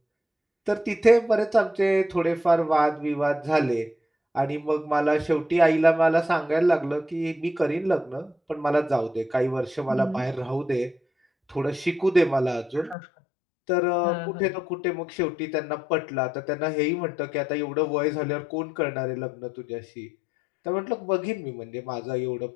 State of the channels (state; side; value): drops out; right; at 13.0 s